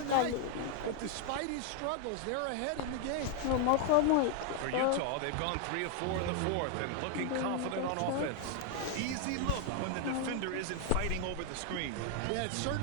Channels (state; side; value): different; both; correlation 0.00